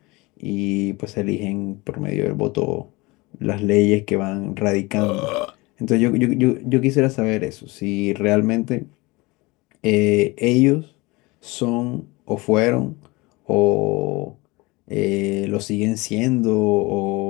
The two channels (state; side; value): quieter; right; 23.7 dB